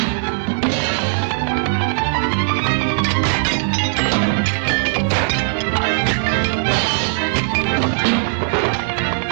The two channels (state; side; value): silent; left; digital silence